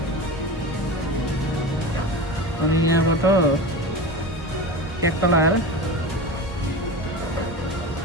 अनि यहाँबाट ट्याक्क लगाएर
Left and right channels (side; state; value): both; normal; correlation 0.27